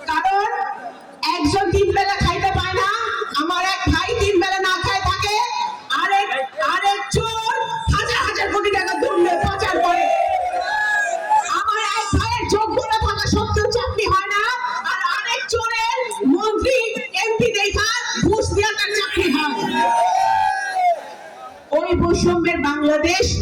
কারণ একজন ৩ বেলা খাইতে পায় না, আমার এক ভাই ৩ বেলা না খায় থাকে, আরেক চোর হাজার হাজার কোটি টাকা দুর্নীতি পাচার করে। আমার এক ভাইয়ের যোগ্যতা থাকা সত্ত্বেও চাকরি হয় না, আর আরেক চোরের মন্ত্রী এমপি দেখা ঘুষ দিয়ে তার চাকরি হয়। ওই বৈষম্যের বাংলাদেশ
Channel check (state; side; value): identical; both; correlation 1.00